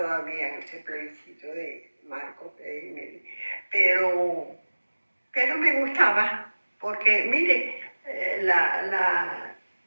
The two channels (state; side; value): inverted; both; correlation -1.00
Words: en ese plebiscito de Marcos Pérez Jiménez. Pero me gustaba, porque mire,